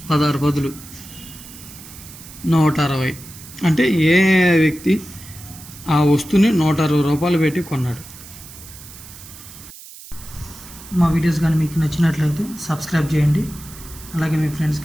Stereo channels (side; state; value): right; noise; hiss, 17 dB below the sound